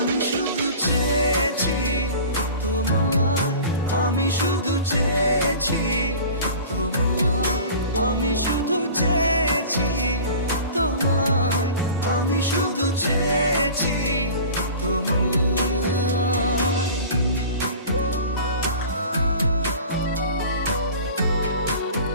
শুধু চেয়েছি তোমায়, আমি শুধু চেয়েছি তোমায়, আমি শুধু চেয়েছি তোমায়, আমি শুধু চেয়েছি তোমায়।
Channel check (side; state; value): both; inverted; correlation -0.40